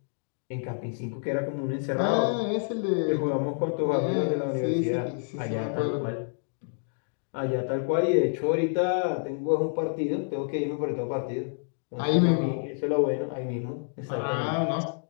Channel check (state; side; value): silent; right; digital silence